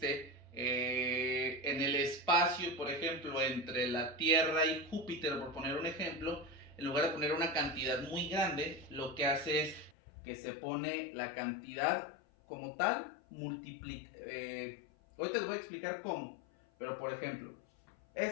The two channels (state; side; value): drops out; right; at 9.9 s